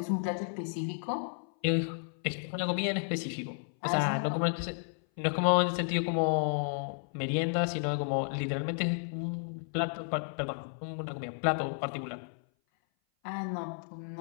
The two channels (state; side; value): silent; right; 56 dB below the other